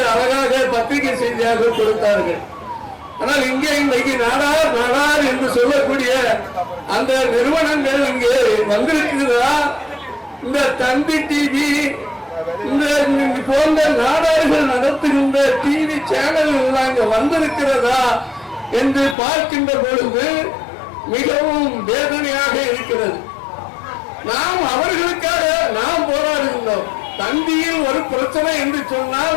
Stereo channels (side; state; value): right; drops out; at 19.2 s